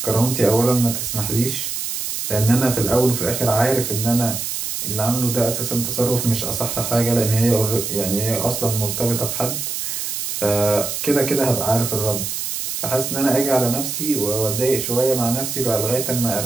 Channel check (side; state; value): right; noise; hiss, 3 dB below the sound